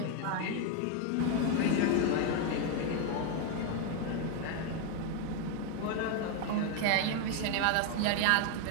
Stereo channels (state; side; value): different; both; correlation 0.01